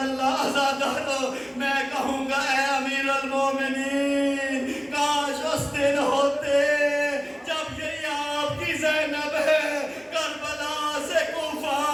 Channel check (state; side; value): identical; both; correlation 1.00